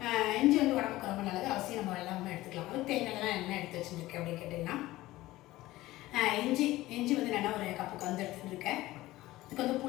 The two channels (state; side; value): quieter; right; 17.3 dB